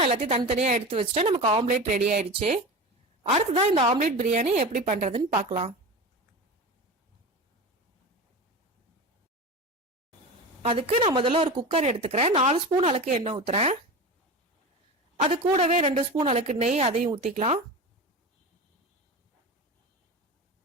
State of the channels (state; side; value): normal; both; correlation 0.28